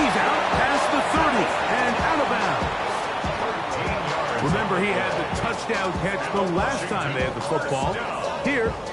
out past the 30 and out of bounds. Remember, he had the touchdown catch the last time they had the football. Here,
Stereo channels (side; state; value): both; identical; correlation 1.00